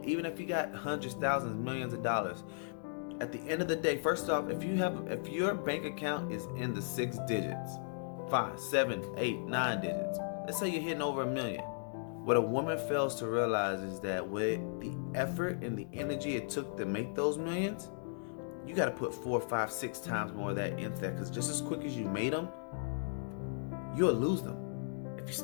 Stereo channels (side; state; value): right; silent; digital silence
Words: even if you got hundreds, thousands, millions of dollars, at the end of the day, first off, if your bank account is in the 6 digits, 5, 7, 8, 9 digits, let's say you're hitting over $1 million. What a woman fails to realize is that with the effort and the energy it took to make those millions, you got to put 4, 5, 6 times more of that into that, because just as quick as you made them, you'll lose them if you